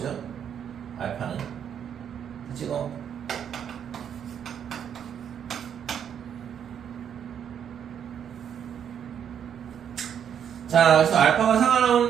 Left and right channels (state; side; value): quieter; left; 8.6 dB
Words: 알파는 지금 자, 그래서 알파가 4가